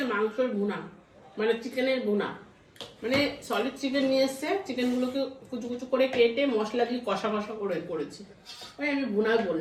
মাংসের ভুনা, মানে চিকেনের ভুনা, মানে সলিড চিকেন নিয়ে এসছে, চিকেনগুলোকে কুচু কুচু করে কেটে মশলা দিয়ে কষা কষা করে করেছি। ওই আমি ভুনা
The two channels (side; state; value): both; identical; correlation 1.00